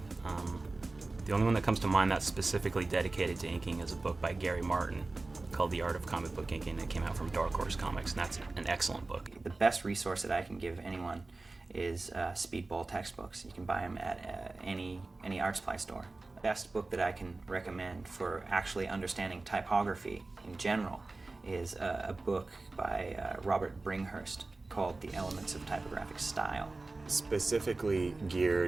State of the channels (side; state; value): left; quieter; 3.3 dB